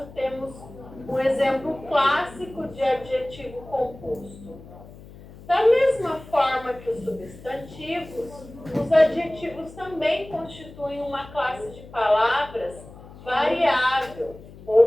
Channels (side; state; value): left; noise; hum, 18 dB below the sound